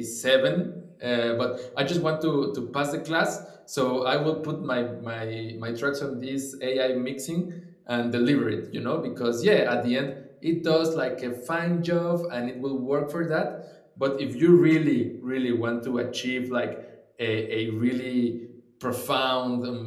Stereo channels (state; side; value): identical; both; correlation 1.00